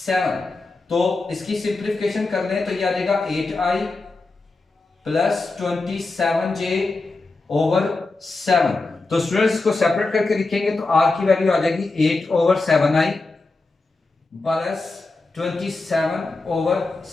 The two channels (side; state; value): right; quieter; 3.5 dB